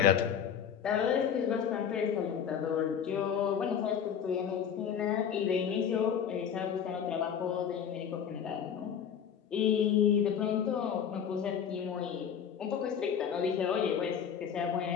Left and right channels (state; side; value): quieter; right; 8.0 dB